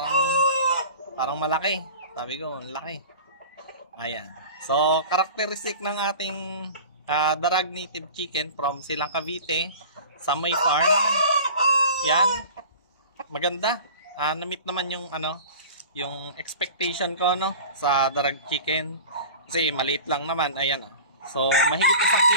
parang malaki. Sabi ko, laki. Ayan. So, characteristic ng ating Darag Native Chicken from Silang, Cavite, Samoy Farm. Yan. Maganda. Na-meet naman yung yung expectation ko sa Darag Chicken. Kasi maliit lang naman. Ayan. So, mahigit 1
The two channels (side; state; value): both; inverted; correlation -0.38